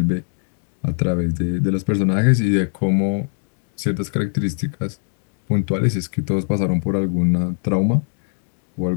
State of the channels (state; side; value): silent; right; 65 dB below the other